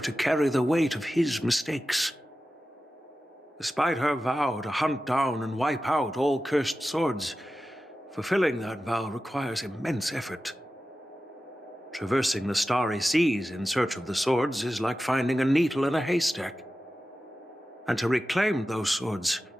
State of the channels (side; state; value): both; normal; correlation 0.93